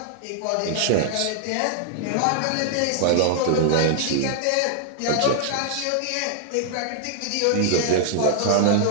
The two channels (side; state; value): both; different; correlation 0.00